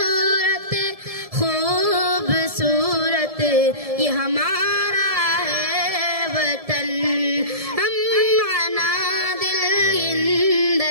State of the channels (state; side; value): late; left; 1.7 ms